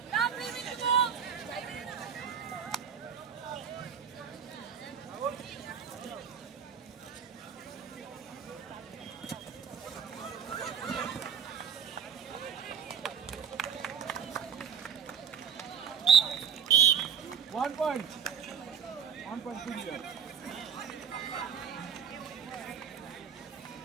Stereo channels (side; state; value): left; quieter; 7.4 dB